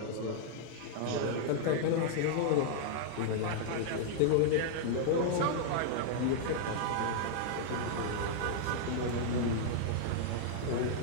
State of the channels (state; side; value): different; both; correlation -0.01